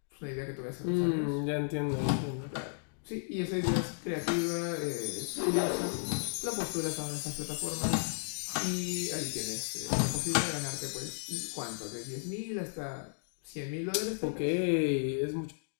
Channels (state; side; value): silent; right; digital silence